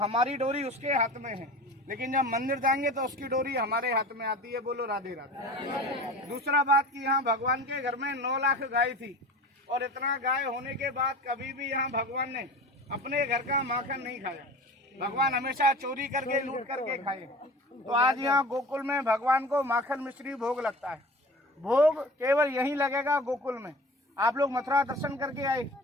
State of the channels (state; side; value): normal; both; correlation 0.38